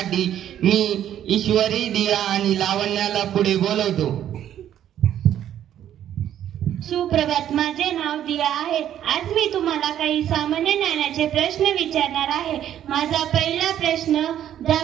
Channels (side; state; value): left; quieter; 10.8 dB